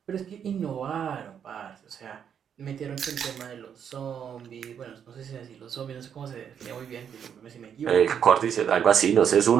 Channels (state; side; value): quieter; left; 8.2 dB